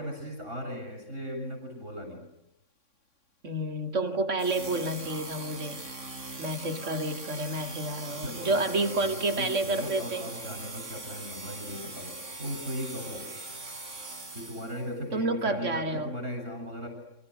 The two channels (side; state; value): left; late; 3.6 ms